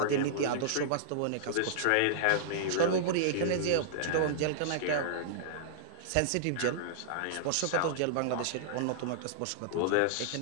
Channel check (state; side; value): different; both; correlation -0.02